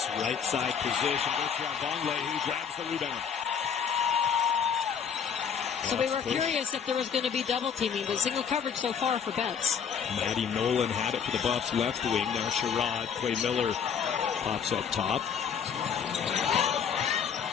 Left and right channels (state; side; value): quieter; right; 7.3 dB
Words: right side position, goes around Vonleh, who grabs the rebound. So we were curious if there was going to be double teaming, but single coverage so far for Betts. Maddie Nolan had it for the Buffs left wing. Now Sherrod, Clay Miller pops up top.